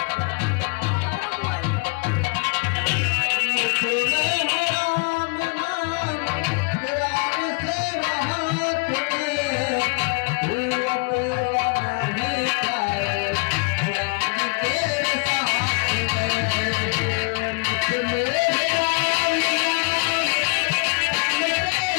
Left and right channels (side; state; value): right; quieter; 32.4 dB